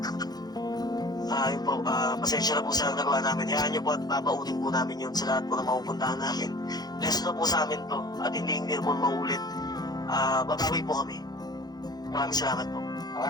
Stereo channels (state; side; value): late; right; 0.19 ms